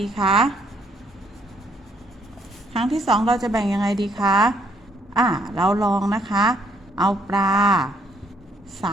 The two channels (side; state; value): both; normal; correlation 0.69